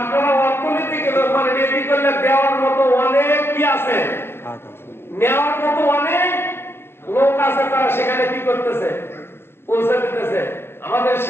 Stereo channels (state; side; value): late; right; 0.11 ms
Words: অর্থনৈতিক মানে রেডি করলে দেওয়ার মতো অনেক কি আছে, নেওয়ার মতো অনেক লোক আছে, তারা সেখানে কি করতেছে? পৌঁছে দিতেছে। আমাদের